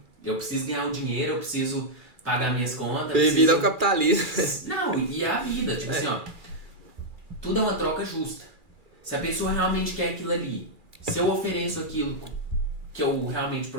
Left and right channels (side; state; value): left; late; 2.4 ms